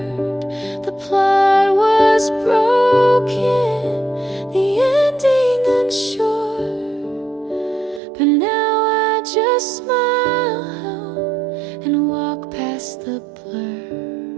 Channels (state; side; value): drops out; left; at 8.0 s